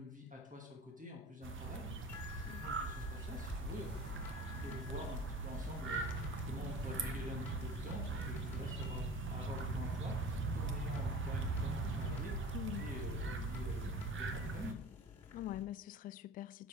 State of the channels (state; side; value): normal; both; correlation 0.38